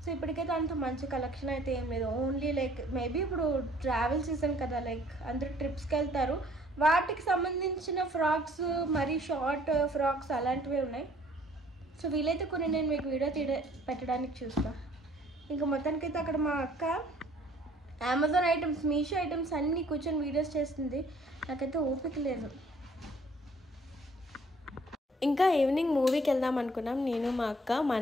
సో ఇప్పటికైతే అంత మంచి కలెక్షన్ అయితే ఏం లేదు. ఓన్లీ లైక్ మేబీ ఇప్పుడు ట్రావెల్ సీజన్ కదా, లైక్ అందరూ ట్రిప్స్కి వెళ్తారు, వాటికి సంబంధించిన ఫ్రాక్స్, మరి షార్ట్ ఫ్రాక్స్ అలాంటివే ఉన్నాయి. సో వీలైతే కొన్ని నేను మీకు వీడియో పెట్టడానికి చూస్తాను. ఇంకా మొత్తానికైతే అక్కడ మా అక్క అమెజాన్ ఐటమ్స్, మీషో ఐటమ్స్ అన్నీ కూర్చొని వీడియోస్ చేస్తుంది. నాకైతే ఓపిక లేదు. ఇంకా ఈవినింగ్ మూవీకి వెళ్దాం అనుకున్నాం నేను మా అక్క.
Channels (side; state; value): both; normal; correlation 0.58